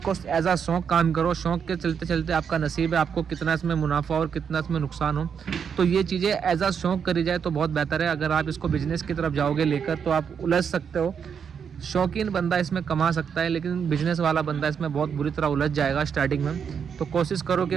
एज अ शौक काम करो। शौक के चलते चलते आपका नसीब है, आपको कितना इसमें मुनाफा और कितना इसमें नुकसान हो, तो ये चीज़ें एज अ शौक करी जाए तो बहुत बेहतर है। अगर आप इसको बिजनेस की तरफ जाओगे लेकर तो आप उलझ सकते हो। शौकीन बंदा इसमें कमा सकता है, लेकिन बिजनेस वाला बंदा इसमें बहुत बुरी तरह उलझ जाएगा स्टार्टिंग में। तो कोशिश करो कि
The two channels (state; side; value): quieter; left; 7.1 dB